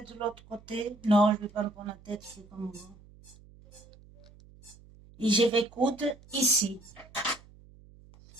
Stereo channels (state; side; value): noise; right; hum, 24 dB below the sound